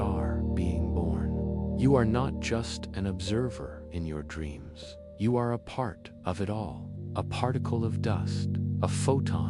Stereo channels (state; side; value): identical; both; correlation 1.00